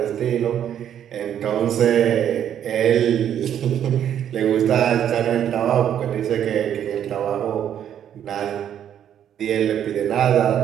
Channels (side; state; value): left; quieter; 9.8 dB